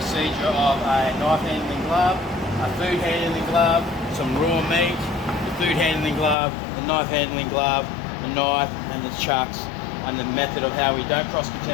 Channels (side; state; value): right; drops out; at 6.4 s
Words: of a knife handling glove, a food handling glove, some raw meat, the food handling glove, the knife handling glove, the knife and the chucks, and the method of how we don't